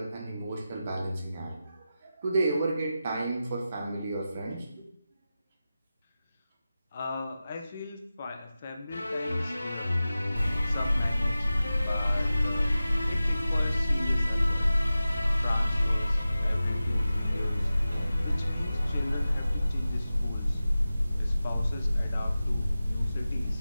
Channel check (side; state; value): both; inverted; correlation -0.94